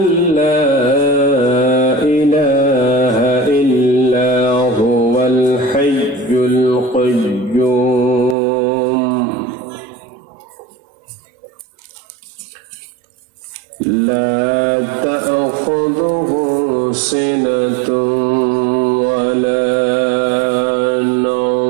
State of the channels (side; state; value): left; drops out; at 8.3 s